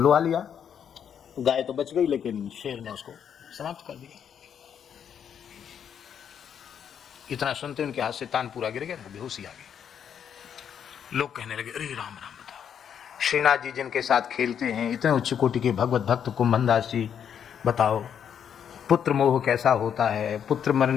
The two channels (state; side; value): quieter; right; 8.3 dB